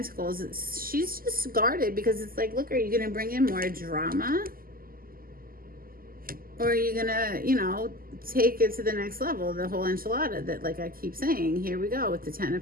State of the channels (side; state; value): left; late; 0.42 ms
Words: She's just guarded because it's like, look, are you going to bring in more drama? Or are you going to, you know, take it to the next level? The whole enchilada that, like I keep saying, here we go with the 10